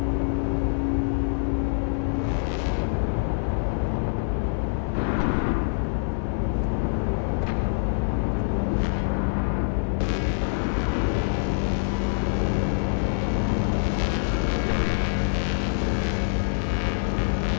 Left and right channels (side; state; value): right; silent; 59 dB below the other